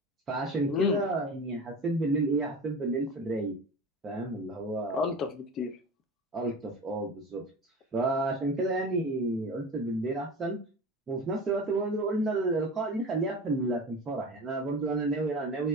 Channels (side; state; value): both; normal; correlation 0.32